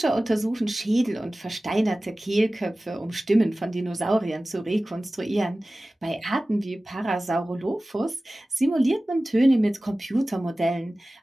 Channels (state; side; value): normal; both; correlation 0.97